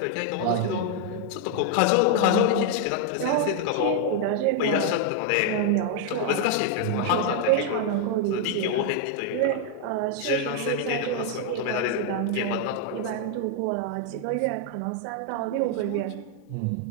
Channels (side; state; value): both; different; correlation 0.00